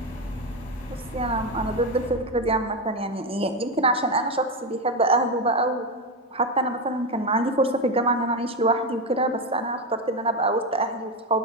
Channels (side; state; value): both; normal; correlation 0.11